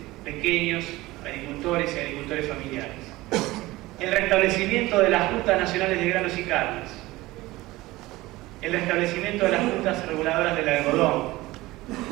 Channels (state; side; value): quieter; left; 19.0 dB